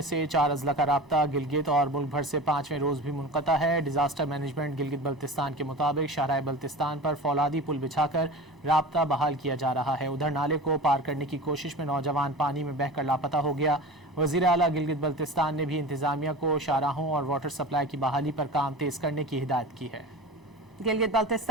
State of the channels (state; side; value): normal; both; correlation 0.33